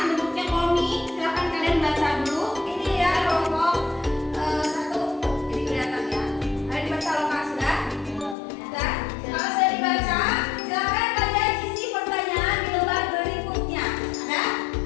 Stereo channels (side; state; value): right; drops out; at 8.3 s